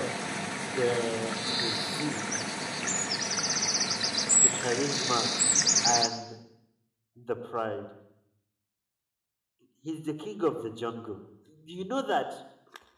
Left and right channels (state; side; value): identical; both; correlation 1.00